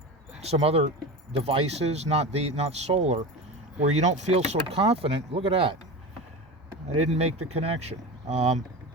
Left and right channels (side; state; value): both; normal; correlation 0.27